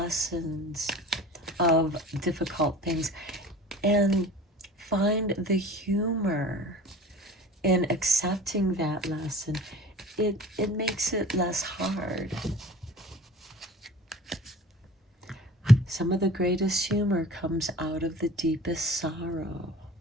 of difficult things and find the humor in accepting that lesson, it makes it less hard. Some of the greatest humor comes out of the deepest sorrow.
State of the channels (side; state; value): both; normal; correlation 0.42